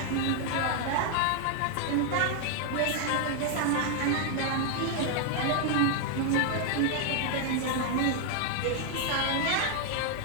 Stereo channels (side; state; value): both; different; correlation 0.00